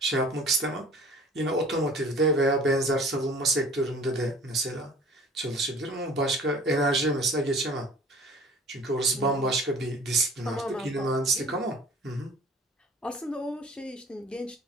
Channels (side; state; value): both; normal; correlation 0.47